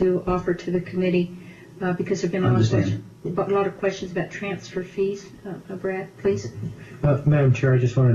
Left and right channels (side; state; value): both; identical; correlation 1.00